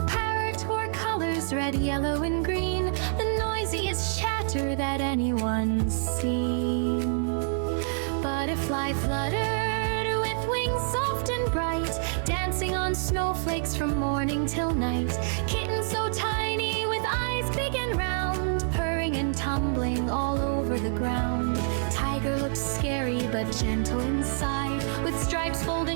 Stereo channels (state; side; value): silent; left; 60 dB below the other